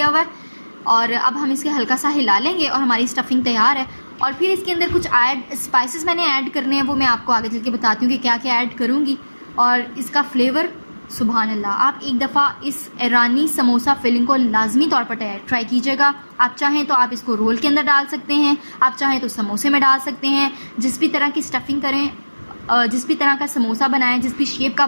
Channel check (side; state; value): both; inverted; correlation -1.00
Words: हुआ है। और अब हम इसके हल्का सा हिला लेंगे और हमारी स्टफिंग तैयार है। और फिर इसके अंदर कुछ स्पाइसेस मैंने ऐड करने हैं, वो मैं आपको आगे चल के बताती हूँ कि क्या क्या ऐड करूँगी। और इसका फ्लेवर सुभान अल्लाह, आप एक दफ़ा इस ईरानी समोसा फिलिंग को लाजमी तौर पर ट्राई कीजिएगा। आप चाहें तो आप इसको रोल के अंदर डाल सकते हैं, आप चाहें तो समोसे में डाल सकते हैं, जिस भी तरह की स्टफिंग करें जिस भी तरह का समोसा बनाएं, जिस भी शेप का